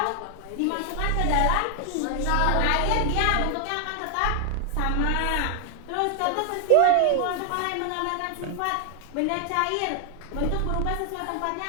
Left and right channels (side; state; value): both; different; correlation 0.00